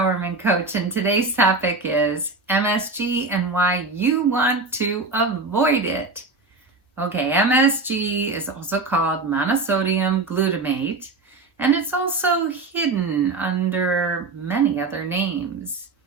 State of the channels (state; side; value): quieter; left; 3.5 dB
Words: coach, and today's topic is MSG and why you want to avoid it. Okay, MSG is also called monosodium glutamate, and it's also hidden under many other names.